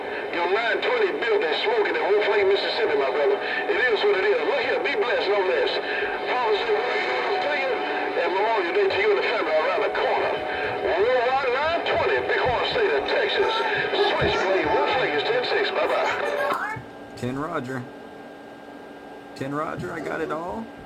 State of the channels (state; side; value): identical; both; correlation 1.00